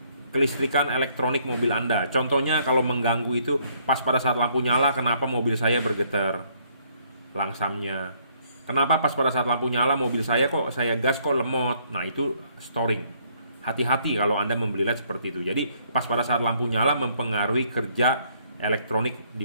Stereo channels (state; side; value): inverted; both; correlation -0.66